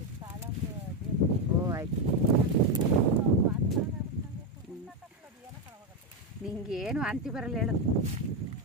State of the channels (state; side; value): normal; both; correlation 0.07